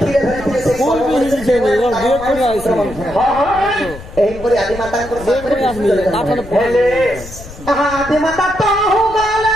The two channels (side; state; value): left; noise; rumble, 15 dB below the sound